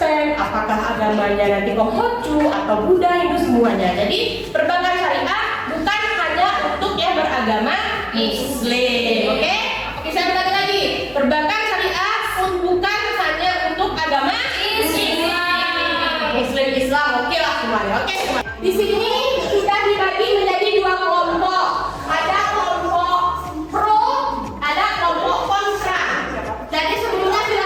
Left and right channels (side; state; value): both; identical; correlation 1.00